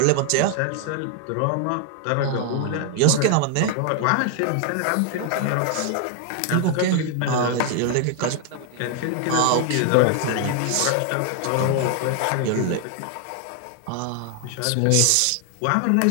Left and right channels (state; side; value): different; both; correlation 0.00